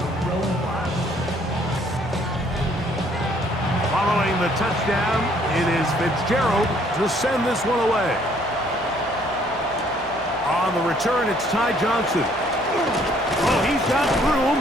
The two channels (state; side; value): noise; left; hum, 23 dB below the sound